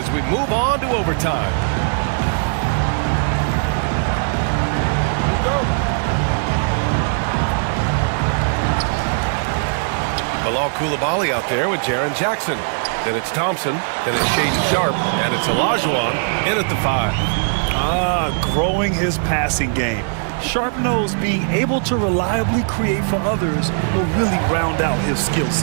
we move on to overtime. Bilal Coulibaly out there with Jaren Jackson. Then it's Thompson. Then it's Shaedon Sharpe. And it's Olajuwon in at the 5. Growing his passing game. Sharp knows being able to reliably create for others will really round out his skill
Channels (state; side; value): silent; left; 56 dB below the other